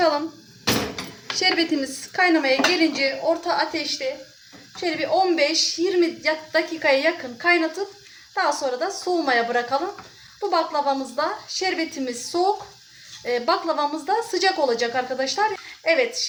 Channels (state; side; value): identical; both; correlation 1.00